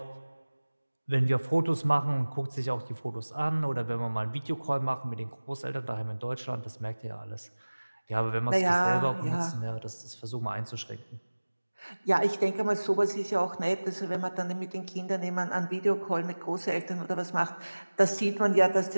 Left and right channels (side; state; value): both; inverted; correlation -1.00